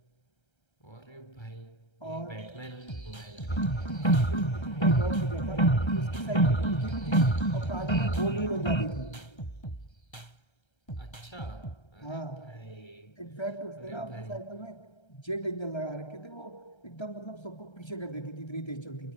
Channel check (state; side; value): late; right; 1.3 ms